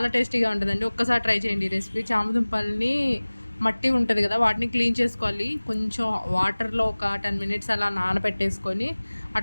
టేస్టీగా ఉంటుందండి. ఒక్కసారి ట్రై చేయండి ఈ రెసిపీ. చామదుంపల్ని మట్టి ఉంటుంది కదా, వాటిని క్లీన్ చేసుకోవాలి. కొంచెం వాటర్లో ఒక 10 మినిట్స్ అలా నానబెట్టేసుకొని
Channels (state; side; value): inverted; both; correlation -1.00